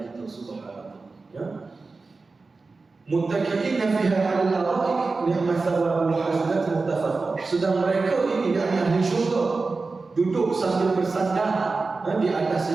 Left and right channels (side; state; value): left; quieter; 3.9 dB